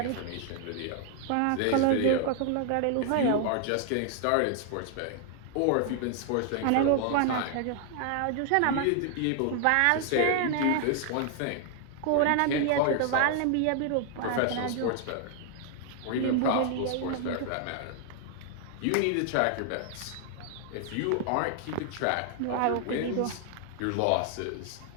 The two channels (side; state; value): both; different; correlation 0.00